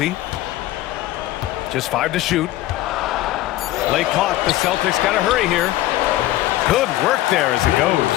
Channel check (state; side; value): quieter; right; 15.6 dB